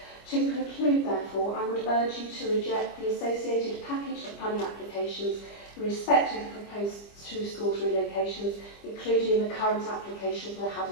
To conclude, therefore, I would urge you to reject the associated package of planning applications in respect of the proposed 2 schools relocations, including the current application for the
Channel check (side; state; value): right; late; 25 ms